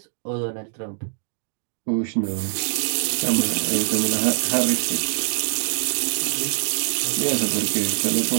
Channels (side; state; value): left; silent; digital silence